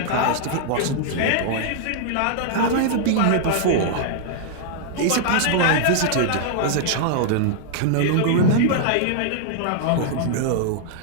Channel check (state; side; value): different; both; correlation -0.01